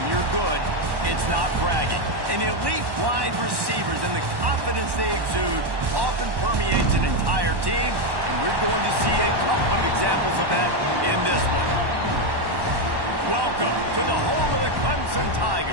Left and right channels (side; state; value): left; late; 1.1 ms